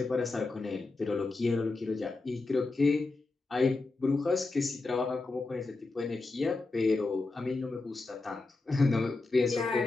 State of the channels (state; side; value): quieter; right; 3.5 dB